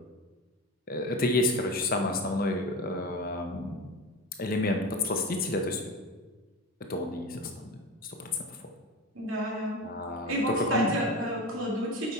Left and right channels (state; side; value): normal; both; correlation 0.27